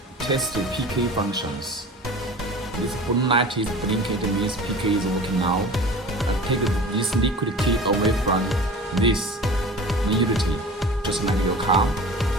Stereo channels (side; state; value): both; normal; correlation 0.38